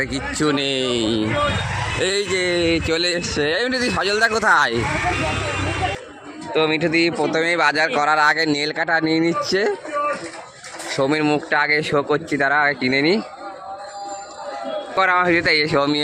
কিচ্ছু নেই, এই যে চলে এসছে। এই মিঠুদি, সজলদা কোথায়? তো মিঠুদি প্রথমেই বাজার করার আগে নেল কাটা নিয়ে নিচ্ছে। সৌমির মুখটা আগে শো করছি, তারা আগে কিনে নি। পর আমার ভিডিওতে এই সৌমি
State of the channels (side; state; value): both; identical; correlation 1.00